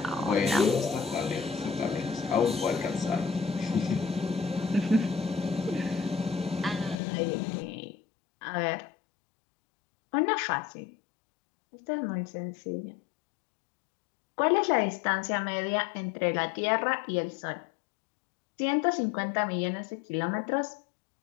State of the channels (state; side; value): drops out; right; at 7.0 s